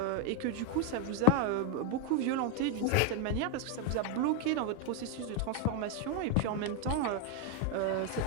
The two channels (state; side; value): different; both; correlation 0.01